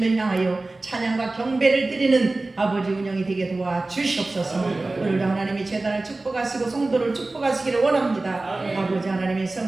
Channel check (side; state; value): left; quieter; 3.1 dB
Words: 향하여 찬양과 경배를 드리는 아버지 운영이 되게 도와주시옵소서. 오늘도 하나님이 재단을 축복하시고 성도를 축복하시기를 원합니다. 아버지 하나님의